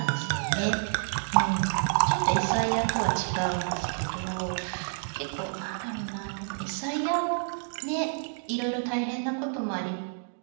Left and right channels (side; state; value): left; silent; digital silence